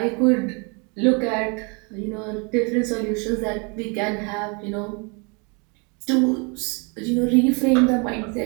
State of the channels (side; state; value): left; quieter; 33.2 dB